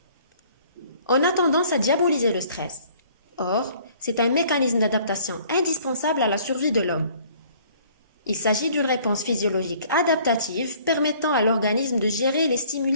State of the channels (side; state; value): both; inverted; correlation -0.56